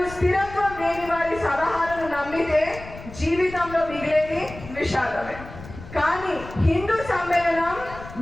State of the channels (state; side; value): noise; left; rumble, 15 dB below the sound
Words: స్థిరత్వం లేని వారి సలహాలను నమ్మితే జీవితంలో మిగిలేది విషాదమే. కానీ హిందూ సమ్మేళనం